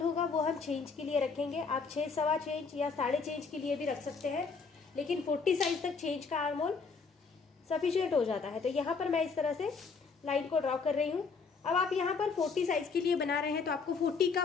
होगा वो हम 6 इंच के लिए रखेंगे। आप 6, 6.25 इंच या 6.5 इंच के लिए भी रख सकते हैं, लेकिन 40 साइज तक 6 इंच का आर्म होल सफिशियंट हो जाता है। तो यहाँ पर मैं इस तरह से लाइन को ड्रॉ कर रही हूँ। अब आप यहाँ पर 40 साइज के लिए बना रहे हैं तो आपको 40 का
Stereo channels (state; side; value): quieter; right; 4.9 dB